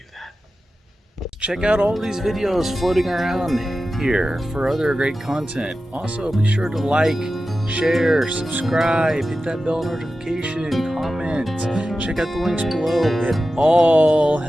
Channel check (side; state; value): both; normal; correlation 0.93